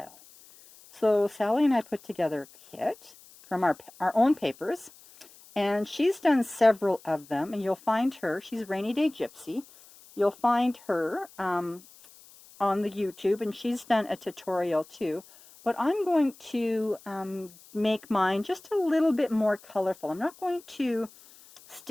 So Sally and I put together a kit from our own papers, and she's done several of them, and you'll find her, she's Rainy Day Gypsy. You'll find her on the YouTube, and she's done a tutorial too. But I'm going to make mine just a little bit more colorful. I'm not going to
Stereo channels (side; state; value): left; noise; hiss, 23 dB below the sound